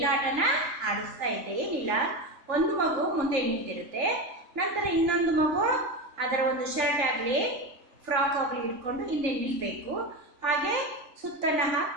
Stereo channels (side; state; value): left; late; 3.7 ms